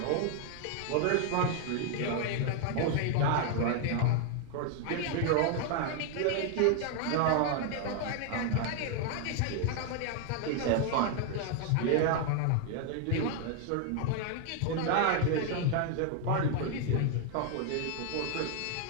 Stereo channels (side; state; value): both; different; correlation 0.00